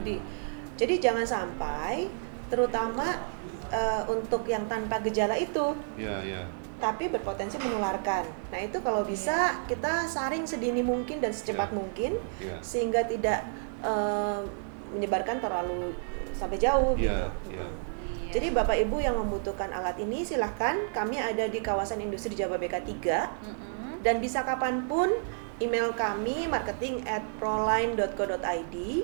Jadi jangan sampai, terutama untuk yang tanpa gejala itu. tapi berpotensi menularkan. Nah itu kalau bisa kita saring sedini mungkin dan secepat Iya. mungkin, Iya. sehingga tidak menyebarkan terlalu sampai jauh. Iya, gitu. iya. Jadi Bapak Ibu yang membutuhkan alat ini silahkan, kami ada di kawasan industri Jababeka 3 dan bisa kapanpun email kami marketing@proline.co.id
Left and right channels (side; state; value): left; silent; digital silence